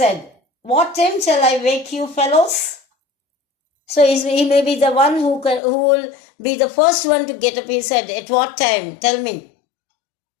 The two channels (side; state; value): right; drops out; at 5.6 s